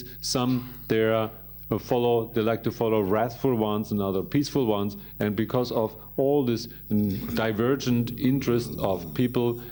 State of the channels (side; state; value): both; identical; correlation 1.00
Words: Some, they like to follow wrathful ones and other peaceful ones. And because of all this divergent interest of people,